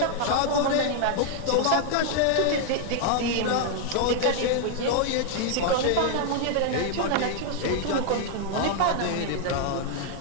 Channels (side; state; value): both; different; correlation 0.00